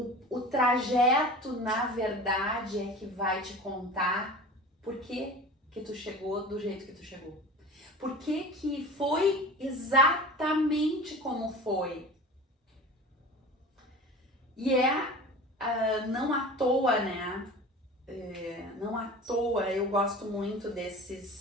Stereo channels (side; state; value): both; normal; correlation 0.36